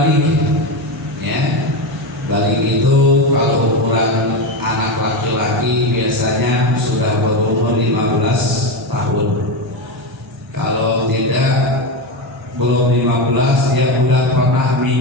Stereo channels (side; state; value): both; normal; correlation 0.15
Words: Ya. Balik itu kalau ukuran anak laki-laki biasanya sudah berumur 15 tahun. Kalau tidak, belum 15, dia sudah pernah